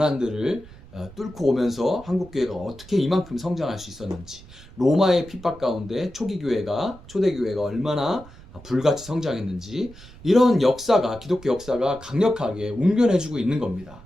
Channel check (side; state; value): right; noise; rumble, 20 dB below the sound